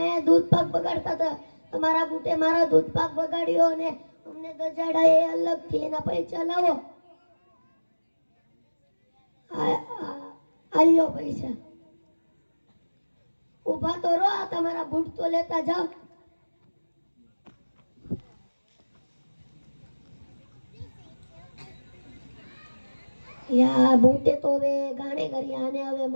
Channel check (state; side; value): inverted; both; correlation -1.00